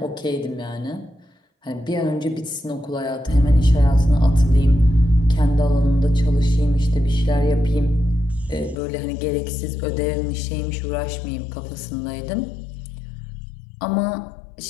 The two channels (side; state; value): right; drops out; at 8.8 s